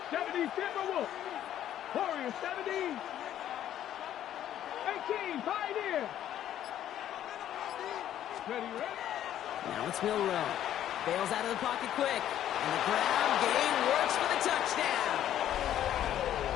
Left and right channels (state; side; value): quieter; right; 11.4 dB